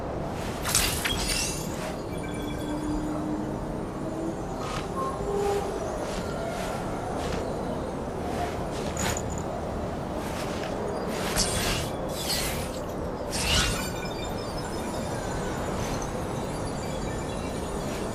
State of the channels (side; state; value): both; identical; correlation 1.00